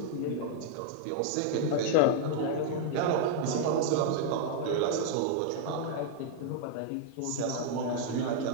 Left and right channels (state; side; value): different; both; correlation -0.01